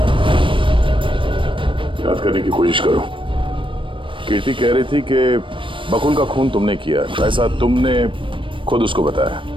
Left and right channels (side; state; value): left; late; 0.25 ms